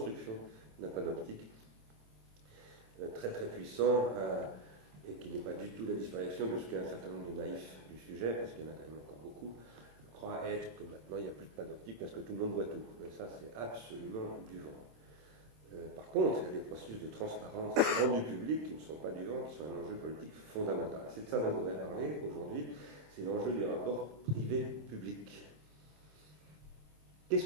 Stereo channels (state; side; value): late; left; 26 ms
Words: d'un panoptique très très puissant et qui n'est pas du tout la disparition de ce qu'un certain nombre de naïfs du sujet, parce qu'il y en a quand même encore beaucoup, croient être que maintenant il n'y a plus de panoptique parce que tout le monde voit tout. Mais ça, c'est absolument du vent. Par contre, il y a des processus de transparence rendus publics qui ne sont pas du vent, qui sont un enjeu politique fondamental. C'est de ça dont on voudrait parler aujourd'hui, c'est l'enjeu du rapport privé-public. Qu'est-ce